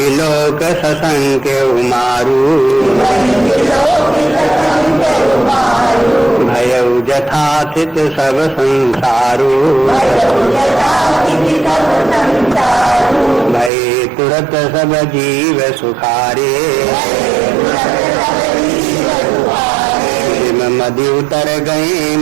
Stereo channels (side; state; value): left; drops out; at 13.7 s